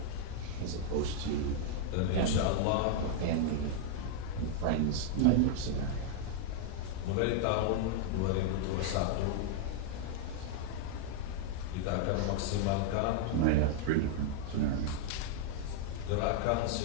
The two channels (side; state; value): both; different; correlation 0.00